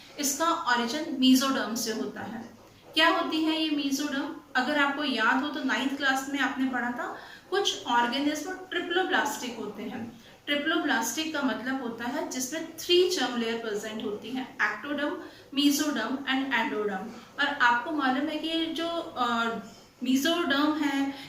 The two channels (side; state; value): both; identical; correlation 1.00